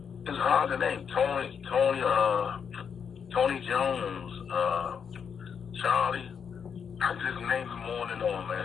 It's hard to name. Tony Jones, Charlie. I just named them on and on,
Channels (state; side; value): quieter; right; 7.0 dB